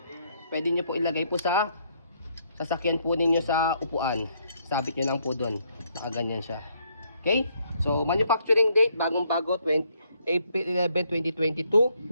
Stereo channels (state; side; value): inverted; both; correlation -0.71